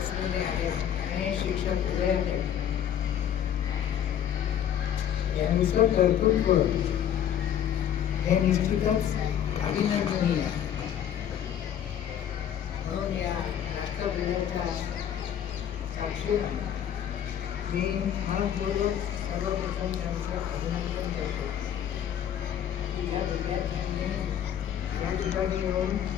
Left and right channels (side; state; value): right; quieter; 9.8 dB